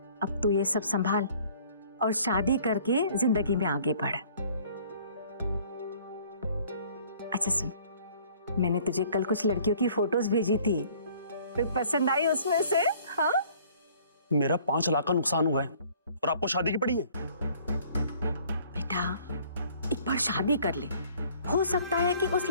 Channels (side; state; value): both; inverted; correlation -0.56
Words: अब तू ये सब संभाल और शादी करके जिंदगी में आगे बढ़। अच्छा सुन, मैंने तुझे कल कुछ लड़कियों की फोटोज भेजी थी, कोई पसंद आई उसमें से? हाँ? मेरा 5 लाख का नुकसान हुआ है और आपको शादी की पड़ी है। बेटा एक बार शादी कर ले, हो सकता है कि उस